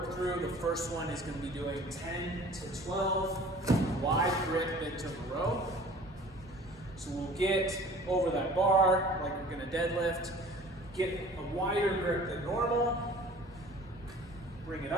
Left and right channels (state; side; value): normal; both; correlation 0.47